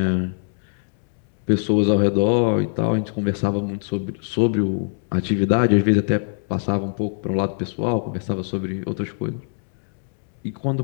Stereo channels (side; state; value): right; silent; digital silence